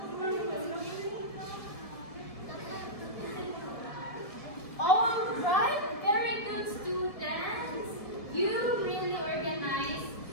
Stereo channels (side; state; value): right; late; 1.7 ms